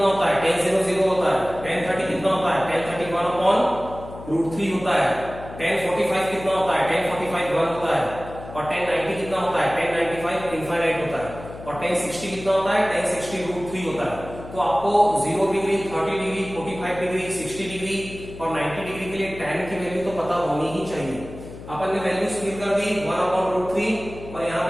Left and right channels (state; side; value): noise; left; hum, 14 dB below the sound